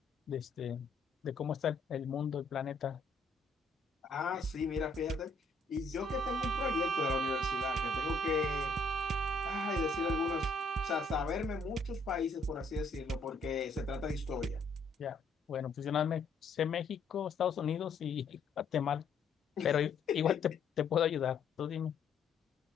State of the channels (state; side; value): quieter; right; 3.4 dB